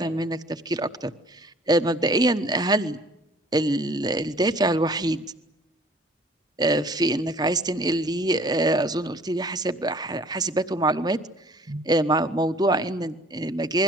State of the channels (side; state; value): both; normal; correlation 0.53